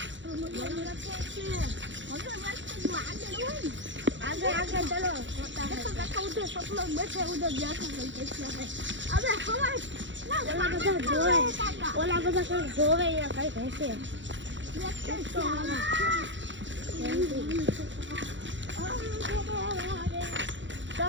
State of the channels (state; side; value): late; left; 0.54 ms